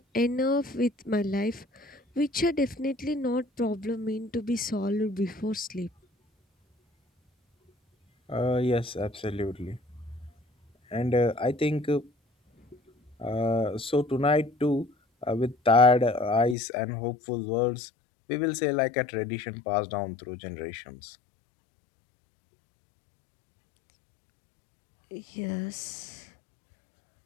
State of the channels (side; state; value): right; drops out; at 16.6 s